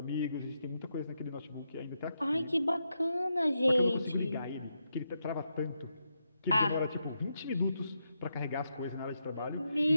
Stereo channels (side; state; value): both; inverted; correlation -0.84